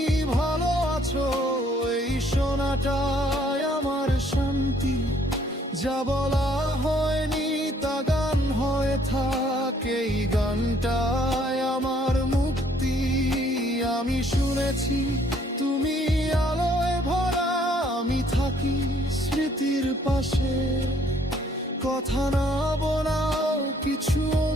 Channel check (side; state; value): both; normal; correlation 0.63